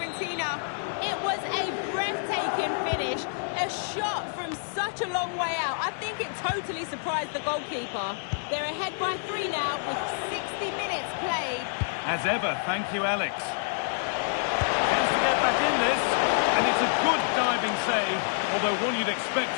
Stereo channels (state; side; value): silent; right; digital silence